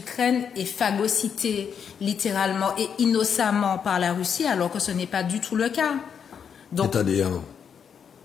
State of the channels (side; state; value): right; quieter; 7.3 dB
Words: est phagocytée littéralement et innocemment par la Russie, alors que ce n'est pas du tout le cas. Donc, c'est-à-dire,